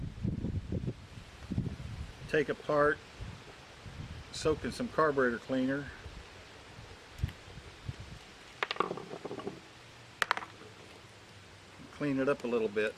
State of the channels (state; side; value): identical; both; correlation 1.00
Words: take apart, soak in some carburetor cleaner, clean it up a little bit.